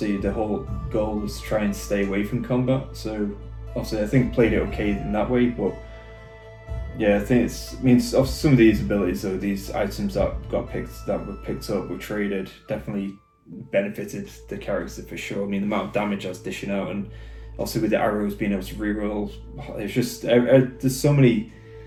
the whole goal was to try and stay away from combat, so obviously I think played it okay in that way, but yeah, I think some of these abilities or these items that were picked up, were traded, definitely benefited the character for sure. I mean, the amount of damage I was dishing out, and also with the arrows being able to reroll, it's just there's so many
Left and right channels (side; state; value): both; identical; correlation 1.00